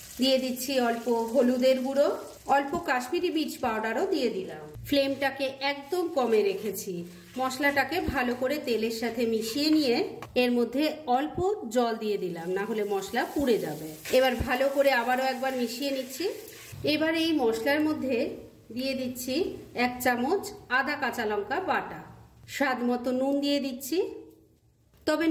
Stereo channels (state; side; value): identical; both; correlation 1.00